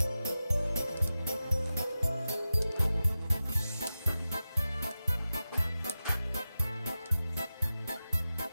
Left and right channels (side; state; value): both; inverted; correlation -0.93